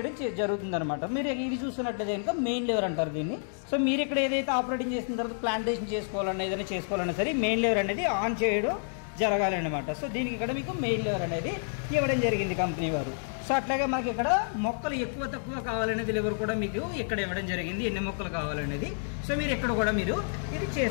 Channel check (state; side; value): silent; right; digital silence